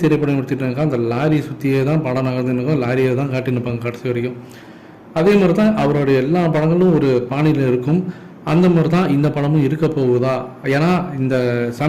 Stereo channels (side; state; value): both; identical; correlation 1.00